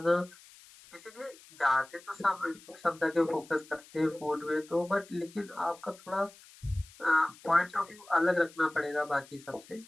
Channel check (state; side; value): noise; left; hiss, 23 dB below the sound